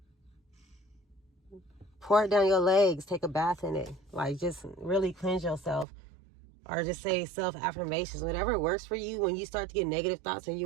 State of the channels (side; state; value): left; drops out; at 5.9 s